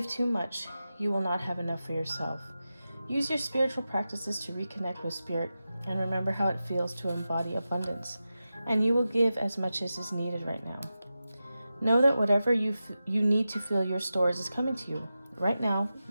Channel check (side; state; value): both; inverted; correlation -0.92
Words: too much, you will not have enough for yourself. Use your spiritual practices to reconnect with spirit and remember how it feels to embody abundance, and you will give as much as is needed right now. Know that whatever you need to fill your stores is coming to you right now.